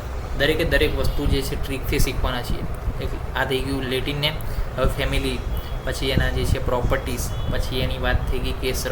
દરેકે દરેક વસ્તુ જે છે ટ્રીકથી શીખવાના છીએ. આ થઈ ગયું લેટિન નેમ. હવે ફેમિલી, પછી એના જે છે પ્રોપર્ટીઝ, પછી એની વાત થઈ ગઈ કે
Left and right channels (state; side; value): identical; both; correlation 1.00